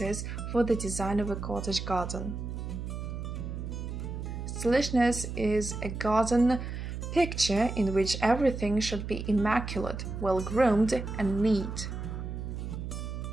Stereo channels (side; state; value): right; noise; hum, 6 dB below the sound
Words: for the design of a cottage garden. Stylishness is a garden picture in which everything should be immaculate, well-groomed, and neat.